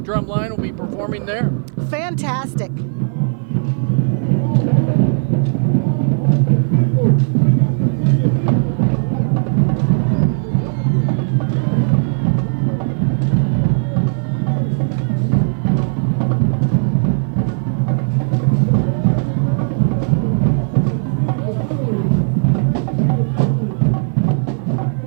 drum line will be performing there. Fantastic.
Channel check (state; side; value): silent; left; 55 dB below the other